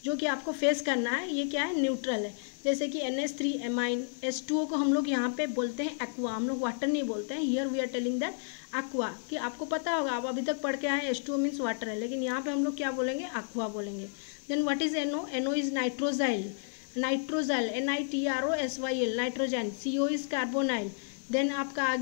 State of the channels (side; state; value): right; silent; digital silence